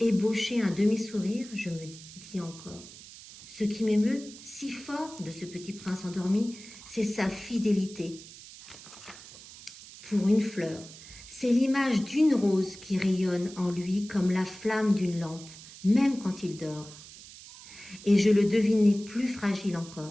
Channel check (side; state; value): right; noise; hiss, 17 dB below the sound